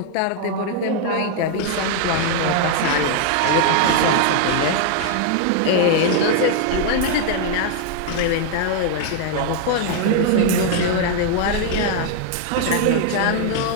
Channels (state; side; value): different; both; correlation 0.00